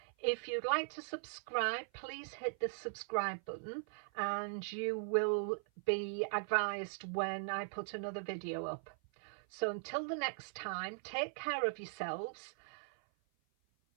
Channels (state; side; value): silent; left; 51 dB below the other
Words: If you'd like to subscribe, please hit the subscribe button and you will be advised when I put another video up. So until the next time, take care of yourselves.